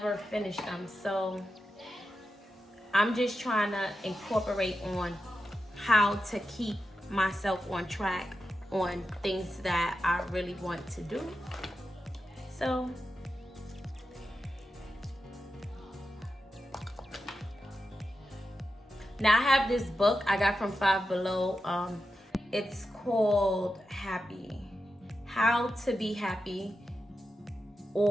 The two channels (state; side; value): normal; both; correlation 0.90